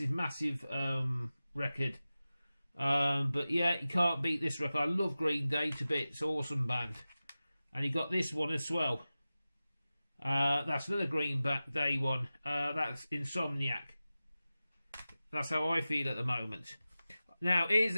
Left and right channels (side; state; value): both; inverted; correlation -0.95